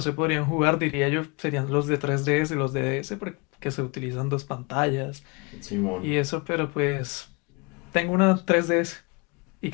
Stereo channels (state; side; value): quieter; right; 29.2 dB